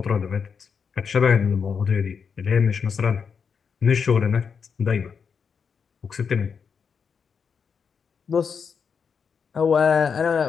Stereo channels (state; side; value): quieter; right; 6.2 dB